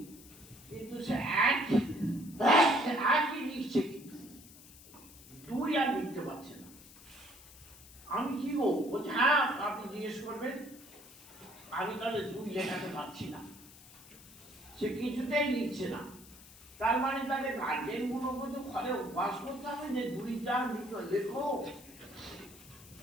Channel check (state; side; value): noise; left; hiss, 20 dB below the sound